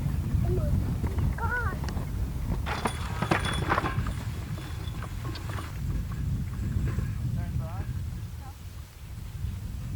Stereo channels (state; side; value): identical; both; correlation 1.00